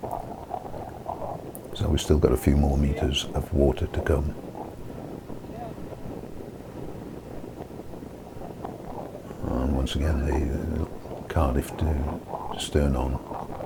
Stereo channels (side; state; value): both; identical; correlation 1.00